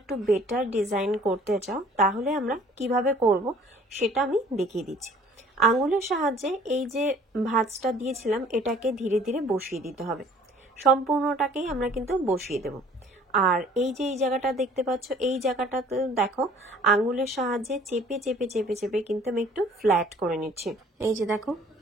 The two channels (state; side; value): normal; both; correlation 0.53